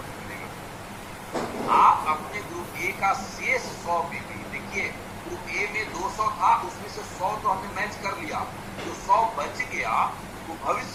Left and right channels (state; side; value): identical; both; correlation 1.00